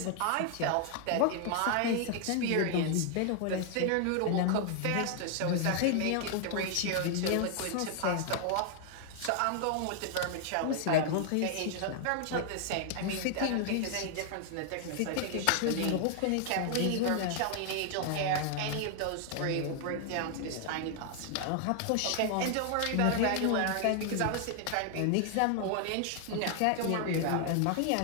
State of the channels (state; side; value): different; both; correlation 0.00